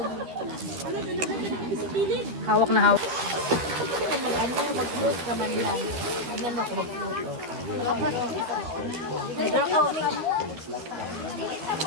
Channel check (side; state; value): left; late; 12 ms